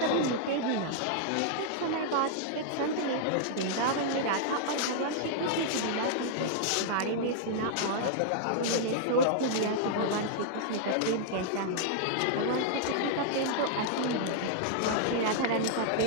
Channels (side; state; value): both; different; correlation -0.01